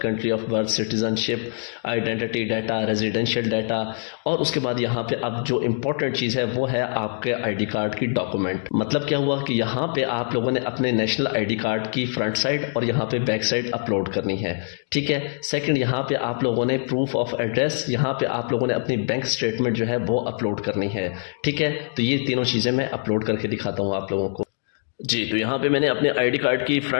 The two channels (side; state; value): right; silent; 62 dB below the other